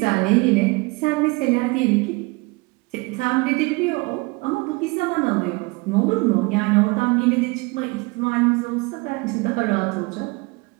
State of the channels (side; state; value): left; quieter; 26.1 dB